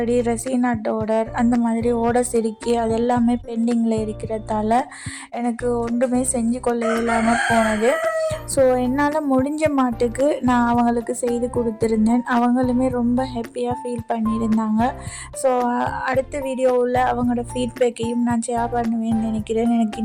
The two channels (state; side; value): identical; both; correlation 1.00